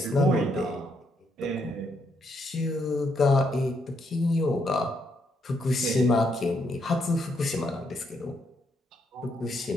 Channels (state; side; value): normal; both; correlation 0.76